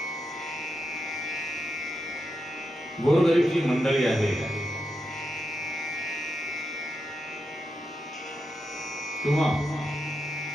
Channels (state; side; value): normal; both; correlation 0.87